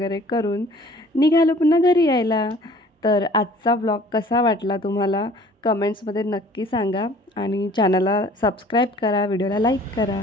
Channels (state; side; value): normal; both; correlation 0.51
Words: करून निघालो पुन्हा घरी यायला. तर आजचा व्लॉग कसा वाटला तुम्हाला कमेंट्समध्ये नक्की सांगा आणि चॅनलला सबस्क्राईब करा, व्हिडिओला लाईक करा.